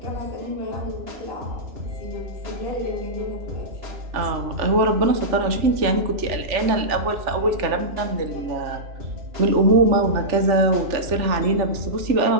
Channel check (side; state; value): left; late; 3.4 ms